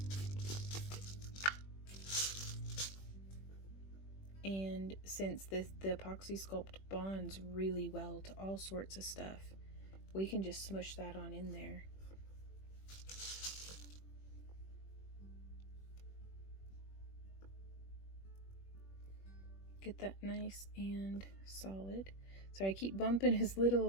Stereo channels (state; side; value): late; right; 21 ms